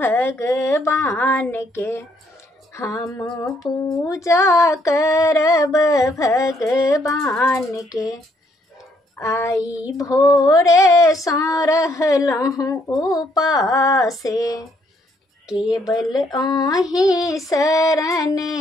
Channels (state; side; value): normal; both; correlation 0.69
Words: के, हम पूजा करब भगवान के। आई भोरे सँ रहलहुँ उपासे, केवल अहीं शरण